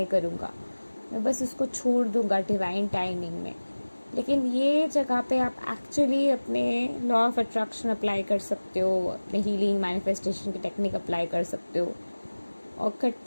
करूँगा, मैं बस उसको छोड़ दूँगा डिवाइन टाइमिंग में। लेकिन ये जगह पे आप एक्चुअली अपने लॉ ऑफ अट्रैक्शन अप्लाई कर सकते हो, अपने हीलिंग मैनिफेस्टेशन की टेक्निक अप्लाई कर सकते हो, और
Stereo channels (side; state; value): both; inverted; correlation -1.00